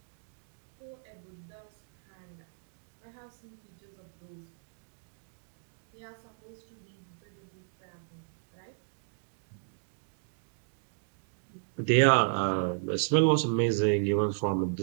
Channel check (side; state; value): left; silent; digital silence